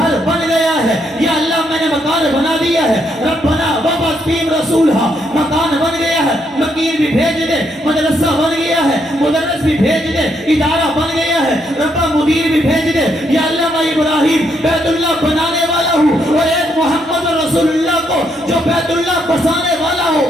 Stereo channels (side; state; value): both; normal; correlation 0.75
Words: بن گیا ہے، یا اللہ میں نے مکان بنا دیا ہے، ربنا وابعث فیہم رسولا، مکان بن گیا ہے، مکین بھی بھیج دے، مدرسہ بن گیا ہے، مدرس بھی بھیج دے، ادارہ بن گیا ہے، ربا مدیر بھی بھیج دے، یا اللہ میں ابراہیم بیت اللہ بنانے والا ہوں اور ایک محمد رسول اللہ کو جو بیت اللہ بسانے والا ہو